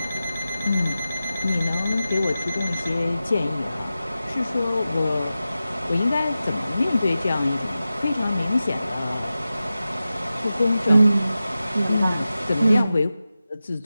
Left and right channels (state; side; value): inverted; both; correlation -0.94